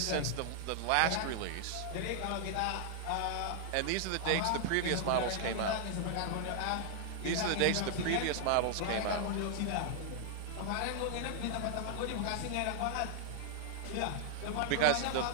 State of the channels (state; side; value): different; both; correlation 0.00